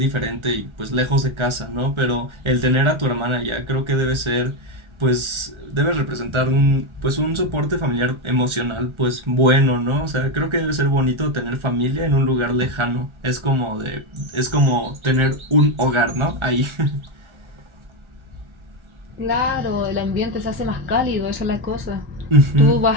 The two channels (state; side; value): late; left; 1.3 ms